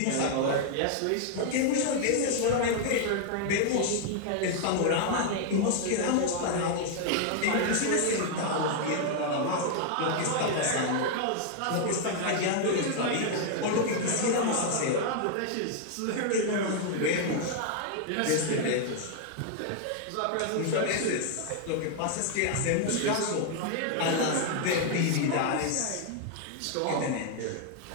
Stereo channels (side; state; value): both; different; correlation 0.00